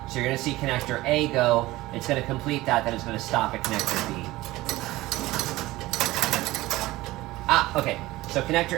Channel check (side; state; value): left; quieter; 18.3 dB